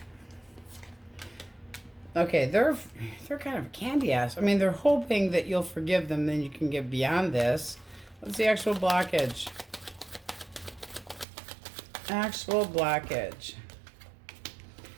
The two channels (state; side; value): drops out; left; at 11.2 s